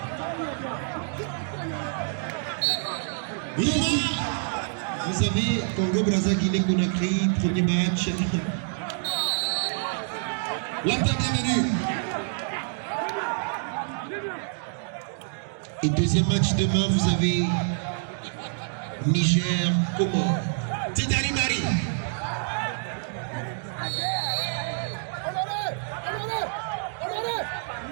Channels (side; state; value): left; silent; digital silence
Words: Vous savez, Congo-Brazza, Guinée-Conakry, premier match. L'Inter bienvenue. Et deuxième match demain, vous avez Niger, Comores. Tidari Mari.